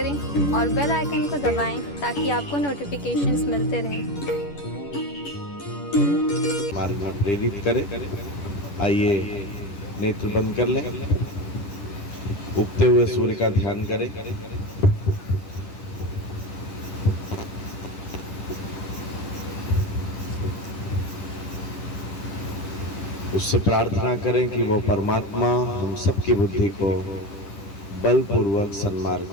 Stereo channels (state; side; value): late; right; 10 ms